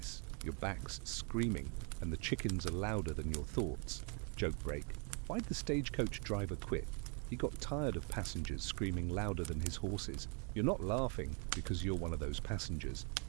Your back's screaming, and the chickens are louder than your thoughts. Joke break. Why'd the stagecoach driver quit? He got tired of passengers screaming louder than his horses. You're not laughing because you're one of those passengers,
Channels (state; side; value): quieter; left; 37.8 dB